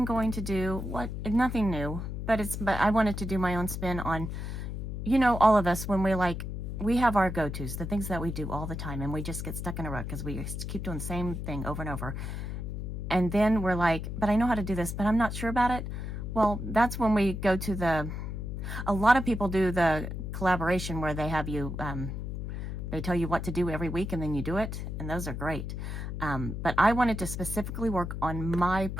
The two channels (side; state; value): left; noise; hum, 5 dB below the sound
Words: going to do nothing new, but I wanted to do my own spin on, all of us when we have our go-tos, the things that we do all the time, and we just get stuck in a rut because we just keep doing the same thing over and over. And then we're like, but I know how to do this, but I'm not sure about it. Well, that's when we go to a lot of people do the collaboration where they have you, they tell you what to do every week and then you do it. And those are great. But I wanted to specifically work on my